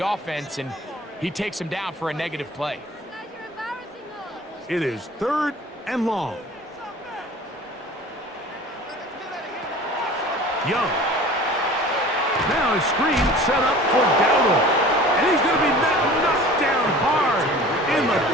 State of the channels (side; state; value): both; normal; correlation 0.43